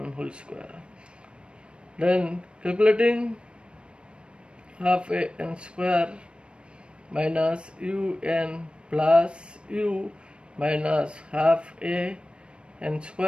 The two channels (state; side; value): late; left; 0.057 ms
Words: whole square. Then calculating half a n square minus un plus u minus half a n